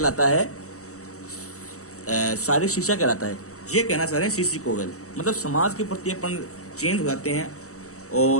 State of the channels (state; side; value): late; right; 0.65 ms